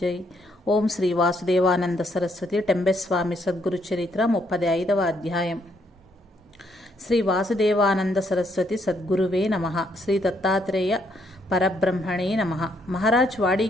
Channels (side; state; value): both; normal; correlation 0.73